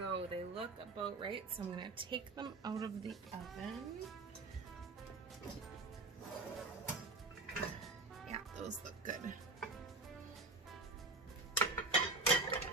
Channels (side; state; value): left; quieter; 3.2 dB